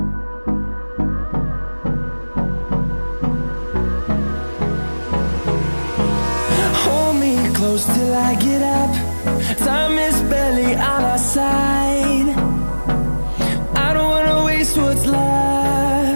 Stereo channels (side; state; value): both; inverted; correlation -1.00